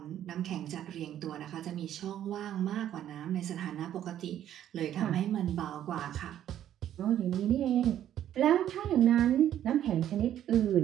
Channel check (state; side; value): quieter; left; 11.2 dB